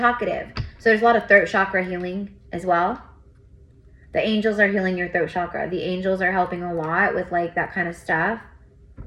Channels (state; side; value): identical; both; correlation 1.00